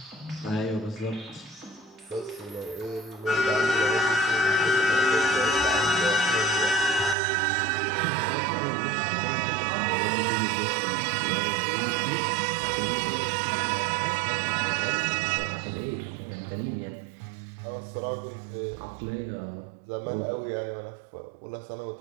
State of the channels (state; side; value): drops out; left; at 7.2 s